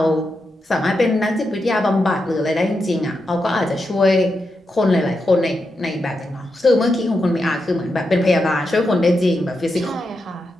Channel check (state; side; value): normal; both; correlation 0.86